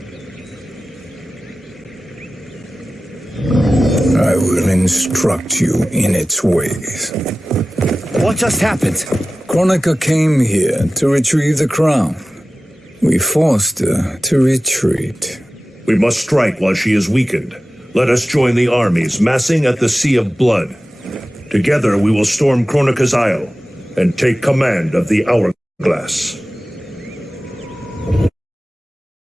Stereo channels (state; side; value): normal; both; correlation 0.95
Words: I will instruct you in its ways. What just happened? Kronika came here to retrieve the crown. We forced her to retreat. We must strike while she is weakened. Let us join the armies massing at the Sea of Blood. Together we will storm Kronika's Isle and take command of the Hourglass.